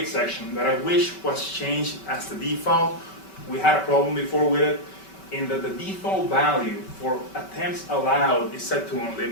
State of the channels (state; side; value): late; right; 5.2 ms